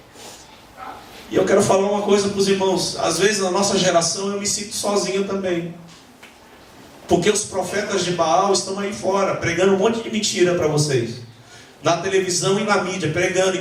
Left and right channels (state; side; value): identical; both; correlation 1.00